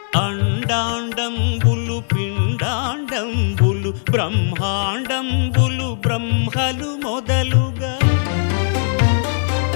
అండాండంబులు పిండాండంబులు బ్రహ్మాండంబులు బ్రహ్మలు మొదలుగా,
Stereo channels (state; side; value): silent; right; 56 dB below the other